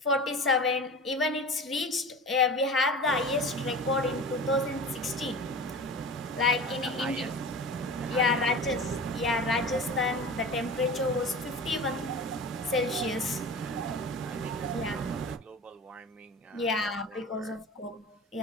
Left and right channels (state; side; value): normal; both; correlation 0.34